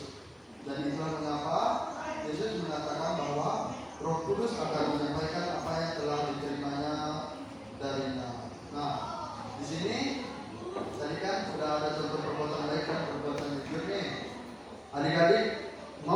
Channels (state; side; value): identical; both; correlation 1.00